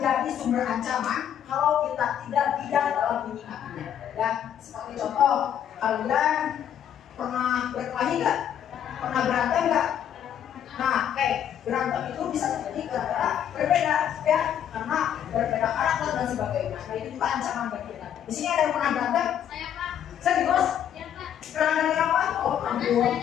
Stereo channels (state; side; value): quieter; right; 9.7 dB